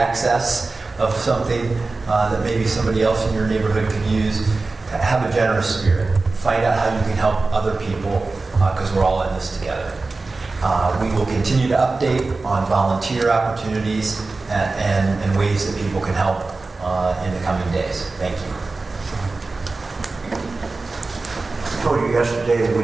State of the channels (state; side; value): quieter; left; 3.6 dB